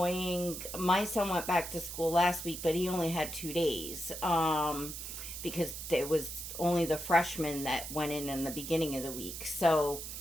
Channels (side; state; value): right; noise; hiss, 8 dB below the sound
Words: my son went back to school last week, but he only had 2 days, because it was only the freshmen that went in the beginning of the week. So,